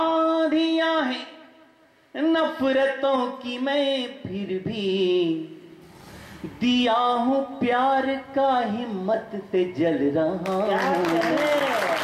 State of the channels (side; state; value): both; identical; correlation 1.00